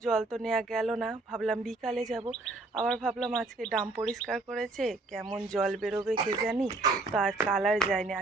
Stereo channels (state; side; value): quieter; left; 3.3 dB